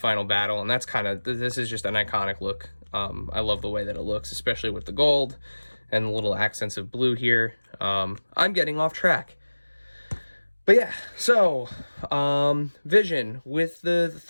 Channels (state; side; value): inverted; both; correlation -1.00